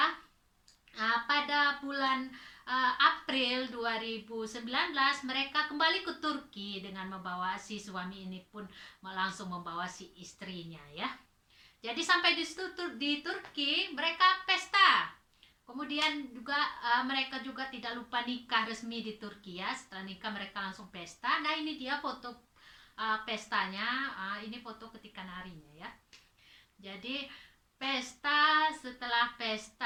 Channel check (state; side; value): identical; both; correlation 1.00